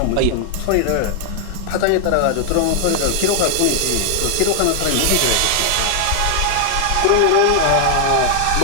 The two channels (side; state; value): both; different; correlation 0.00